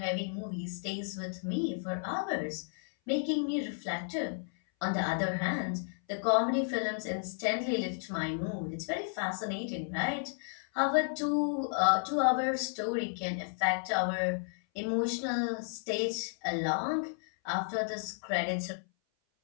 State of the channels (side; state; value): right; silent; 56 dB below the other